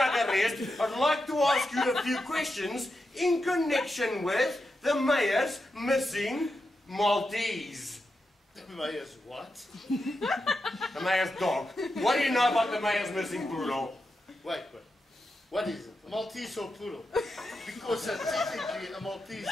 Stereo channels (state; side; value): normal; both; correlation 0.88